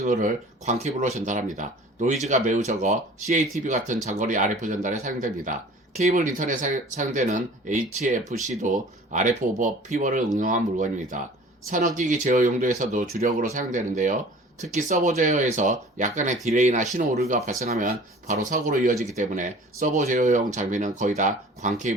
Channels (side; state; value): both; normal; correlation 0.46